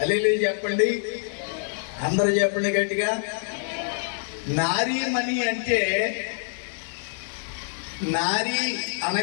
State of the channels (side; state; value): right; silent; digital silence